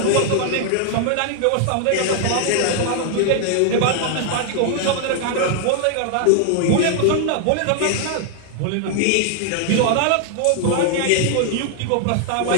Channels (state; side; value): different; both; correlation 0.00